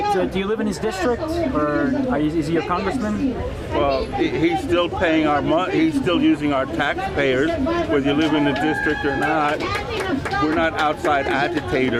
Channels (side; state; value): both; identical; correlation 1.00